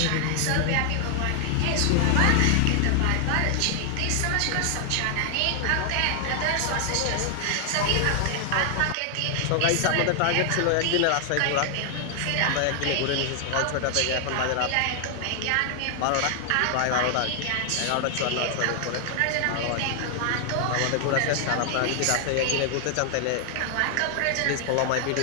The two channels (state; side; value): different; both; correlation 0.00